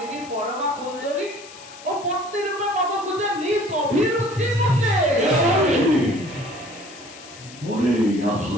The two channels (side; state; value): left; noise; hiss, 18 dB below the sound